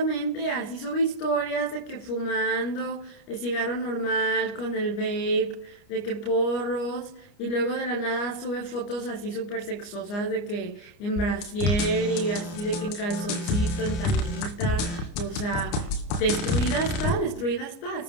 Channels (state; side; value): late; right; 29 ms